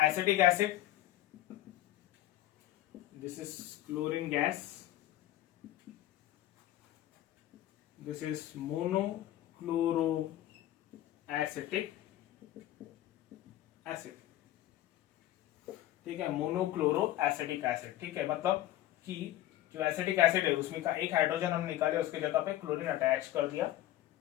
acid, this is chlorine gas, this is monochloro acetic acid, ठीक है, मोनोक्लोरो एसिटिक एसिड, ठीक है। मतलब कि जो एसिटिक एसिड है उसमें का एक हाइड्रोजन हम निकाले, उसके जगह पे क्लोरीन अटैच कर दिया,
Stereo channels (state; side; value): quieter; right; 14.1 dB